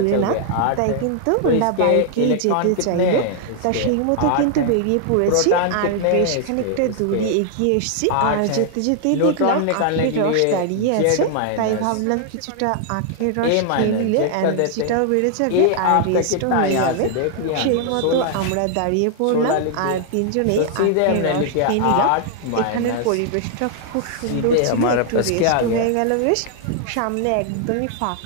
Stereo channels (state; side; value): different; both; correlation 0.00